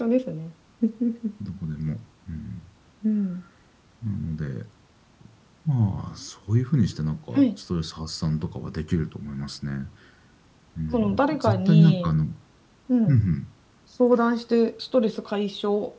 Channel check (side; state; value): both; identical; correlation 1.00